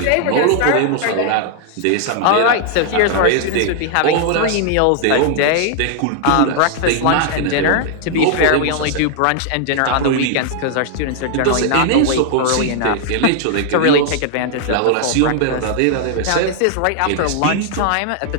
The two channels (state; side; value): different; both; correlation 0.00